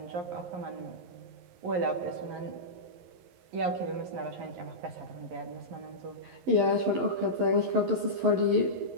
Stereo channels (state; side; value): late; left; 11 ms